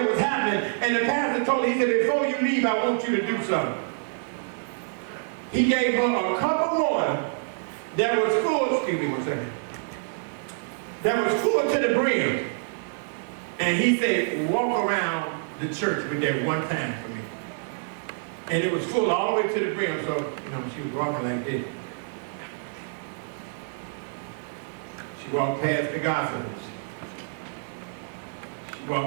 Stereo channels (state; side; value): silent; left; digital silence